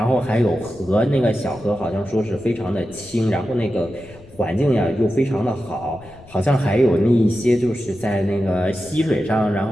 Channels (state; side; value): noise; left; rumble, 22 dB below the sound